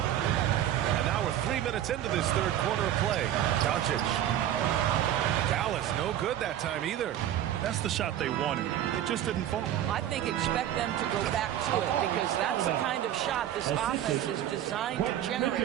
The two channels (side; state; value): left; quieter; 11.5 dB